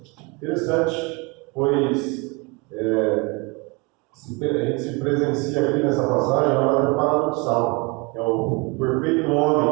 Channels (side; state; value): left; quieter; 28.7 dB